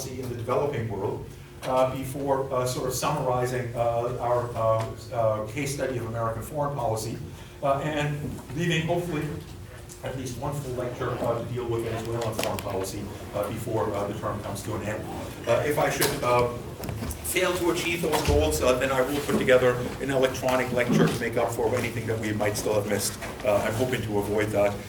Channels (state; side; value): identical; both; correlation 1.00